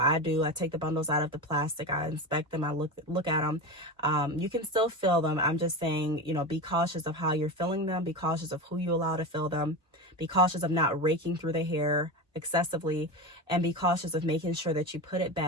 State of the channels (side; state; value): both; normal; correlation 0.23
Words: take the bundles out of the plastic, I inspect them, I look at them. You can still fill them. I'm just saying, be cautious of how you're filling them, be cautious of who you allow to fill them, be cautious of not raking through the hair excessively, and be cautious of making sure that you put it